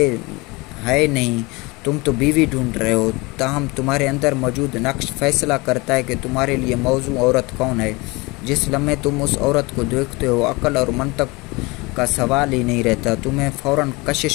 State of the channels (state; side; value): quieter; right; 25.0 dB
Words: नहीं, तुम तो बीवी ढूंढ रहे हो। ताहम तुम्हारे अंदर मौजूद नक्श फैसला करता है कि तुम्हारे लिए मौजू औरत कौन है। जिस लम्हे तुम उस औरत को देखते हो, अक्ल और मंतक का सवाल ही नहीं रहता, तुम्हें फ़ौरन